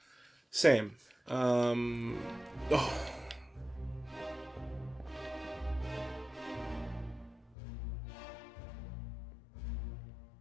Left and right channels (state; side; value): drops out; right; at 7.6 s